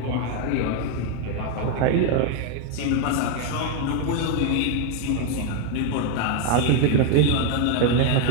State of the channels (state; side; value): different; both; correlation 0.01